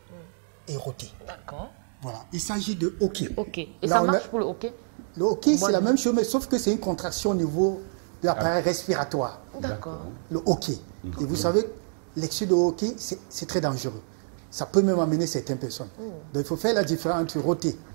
et roter. D'accord. Voilà. Il s'agit de hockey. Ok. Et Là, ça on a- marche pour le hockey? Le hockey, c'est Moi, la même chose, mais sauf que c'est une contraction au niveau de l'appareil respiratoire. D'accord. Le hockey. Et vous savez, l'excès de hockey, c'est très dangereux. Ça peut même amener certaines personnes. Donc il faut faire la différence entre rôter.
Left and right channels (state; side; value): silent; left; digital silence